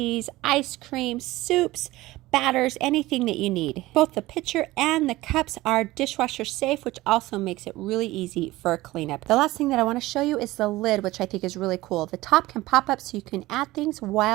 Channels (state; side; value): quieter; left; 18.3 dB